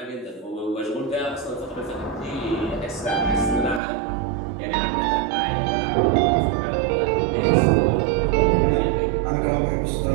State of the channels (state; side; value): drops out; left; at 3.8 s